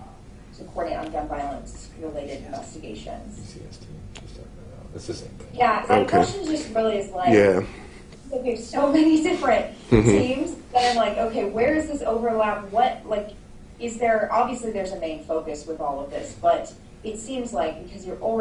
to coordinate on gun violence related investigations. It's the same thing. Yeah, my Okay. question just really is like, Yeah. we have so many different teams that I'm like, okay, where is this overlap? What, like, is there, obviously there's a main focus with all of this, but it seems like because you're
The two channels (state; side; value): identical; both; correlation 1.00